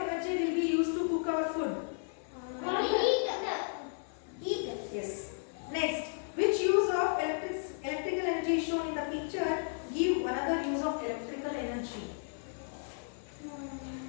energy will be used to cook our food? Heat. Yes. Next, which use of electrical energy is shown in the picture? Give another use of electrical energy.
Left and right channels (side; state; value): right; silent; digital silence